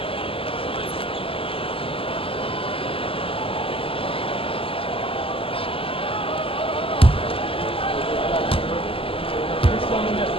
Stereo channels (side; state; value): right; late; 0.26 ms